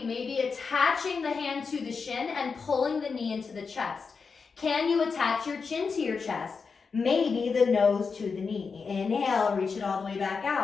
maybe attaching the hand to the shin and pulling the knee into the chest. Can you attach your chin to your chest? Maybe the nose to the knee. Inhale, reach it all the way back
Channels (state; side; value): quieter; right; 5.2 dB